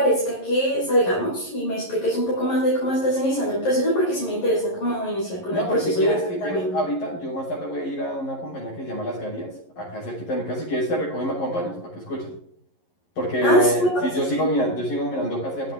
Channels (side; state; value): right; late; 11 ms